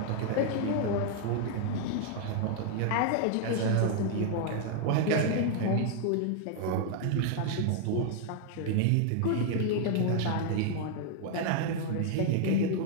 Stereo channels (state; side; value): different; both; correlation 0.00